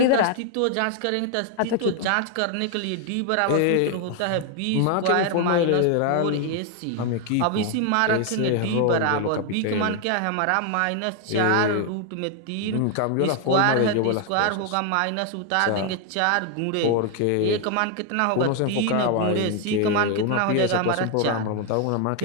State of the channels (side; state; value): both; different; correlation 0.01